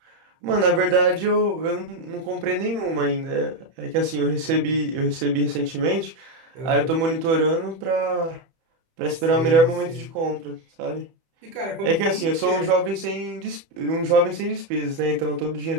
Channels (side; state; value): left; late; 30 ms